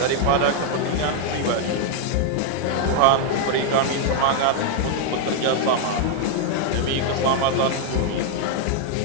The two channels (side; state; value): both; different; correlation 0.00